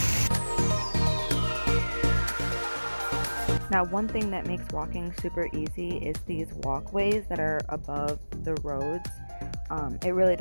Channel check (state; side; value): inverted; both; correlation -1.00